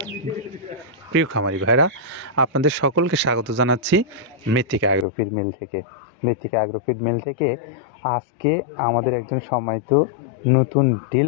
প্রিয় খামারি ভাইরা, আপনাদের সকলকে স্বাগত জানাচ্ছি মৃত্তিকা অ্যাগ্রোফিড মিল থেকে। মৃত্তিকা অ্যাগ্রোফিড মিল থেকে আজকে আমাদের একজন সম্মানিত নতুন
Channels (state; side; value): drops out; right; at 5.1 s